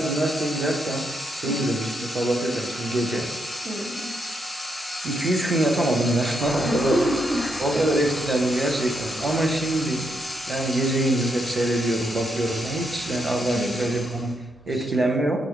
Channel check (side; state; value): both; normal; correlation 0.79